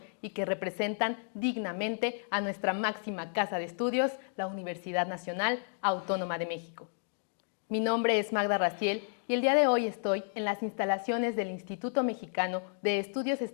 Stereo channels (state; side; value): silent; right; digital silence